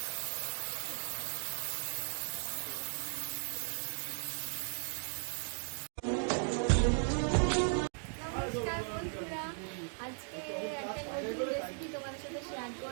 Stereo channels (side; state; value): left; silent; 53 dB below the other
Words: নমস্কার বন্ধুরা, আজকে একটা নতুন রেসিপি তোমাদের সাথে শেয়ার